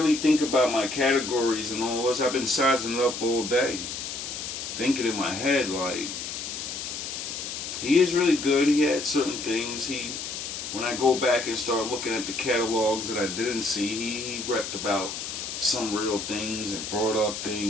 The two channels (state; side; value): noise; left; hiss, 6 dB below the sound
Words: think about my categories and all this, I've been sizing it up all day. Thinking in my head, like, he is really good. He had certain things. When I go back and start looking at the catalogs that I didn't see, he repped about some real things and brought up